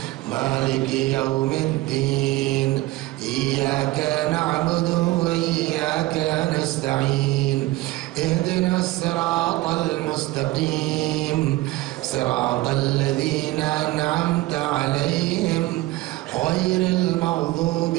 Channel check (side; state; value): left; quieter; 18.3 dB